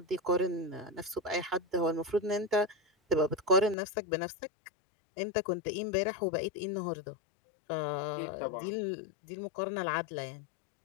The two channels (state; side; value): drops out; right; at 3.8 s